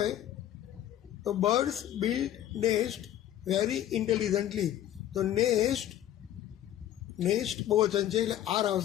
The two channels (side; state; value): right; quieter; 12.1 dB